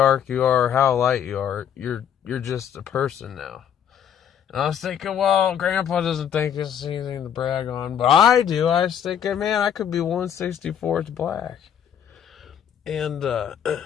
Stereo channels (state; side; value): quieter; right; 8.8 dB